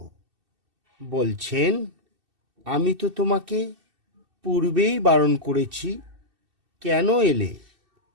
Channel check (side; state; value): left; late; 2.6 ms